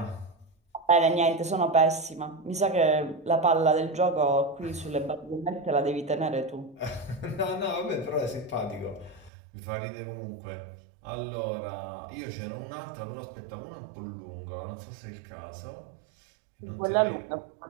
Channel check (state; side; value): drops out; left; at 9.3 s